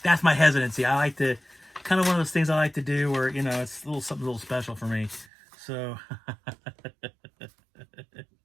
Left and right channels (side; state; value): left; drops out; at 5.2 s